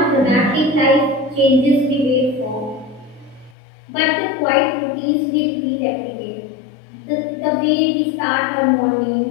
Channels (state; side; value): drops out; right; at 3.6 s